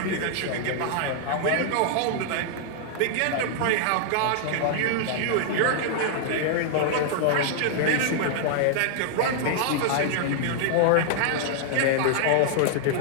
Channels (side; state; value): both; different; correlation -0.01